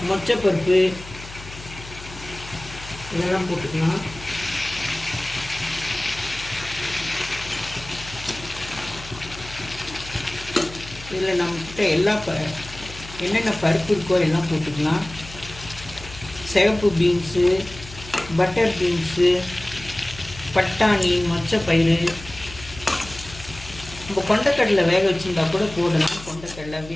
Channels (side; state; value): left; noise; hum, 15 dB below the sound